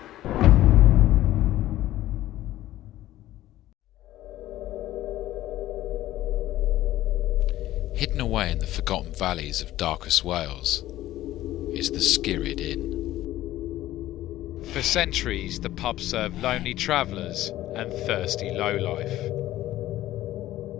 Hidden away in the forgotten valleys of darkest Wales is the Skirrid Inn. For centuries, the pub served lonely travellers and thirsty lowlife.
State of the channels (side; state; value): right; quieter; 14.8 dB